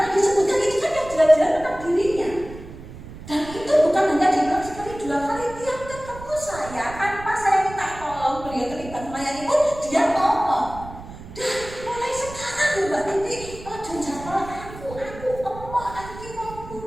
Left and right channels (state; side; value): noise; right; rumble, 14 dB below the sound